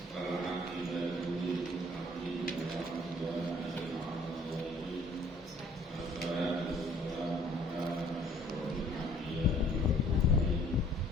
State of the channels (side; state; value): both; normal; correlation 0.56